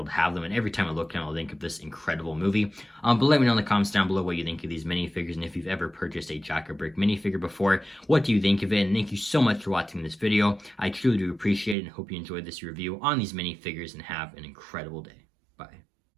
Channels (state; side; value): drops out; left; at 11.8 s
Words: to have them. And every time I look at them, I'll think of this incredible movie. But let me know in the comments down below what you think of these minifigures, and if you've ever purchased a Jaka minifigure before, what do you think of it? And thank you so much for watching this video. I truly do appreciate it, and hope you enjoyed this review on these minifigures, and have an incredible day. Bye.